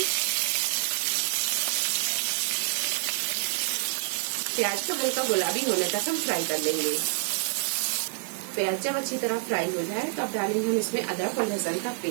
प्याज को हल्का गुलाबी होने तक हम फ्राई कर लेंगे। प्याज जब अच्छी तरह फ्राई हो जाए तो अब डालेंगे हम इसमें अदरक और लहसुन का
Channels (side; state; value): left; silent; 60 dB below the other